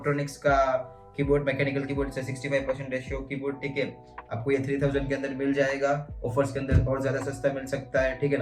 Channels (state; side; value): identical; both; correlation 1.00